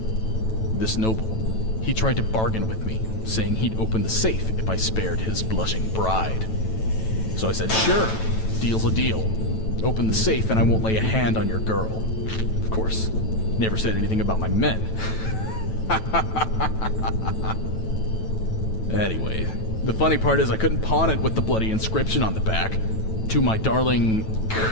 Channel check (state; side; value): late; right; 9.1 ms